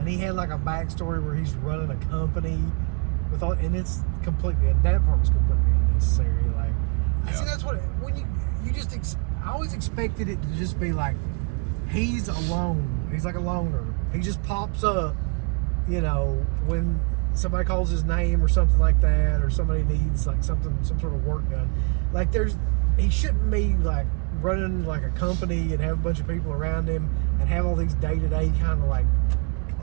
he had like a backstory where he's running a company with all, and it's completely, and that part was completely unnecessary. Like, Yeah. see, that's what, when I always expected it to just be like, he's alone. He's like a loner. He just pops up, you know, when somebody calls his name or something like that, or somebody needs like some sort of work done. Like he shouldn't be like running like a company and have a bunch of people around him and have all these day-to-day kind of like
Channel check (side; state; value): left; quieter; 34.2 dB